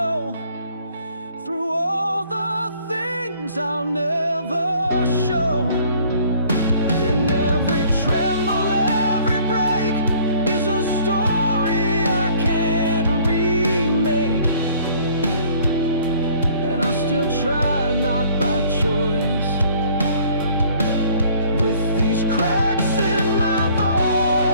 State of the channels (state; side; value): inverted; both; correlation -0.56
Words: through all the things I'll never show. In every tremble, every break is a story I can't remake. And I still try, not by choice, with these cracks in my voice.